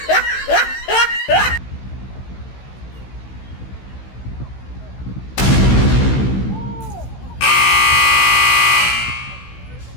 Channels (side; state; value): right; late; 16 ms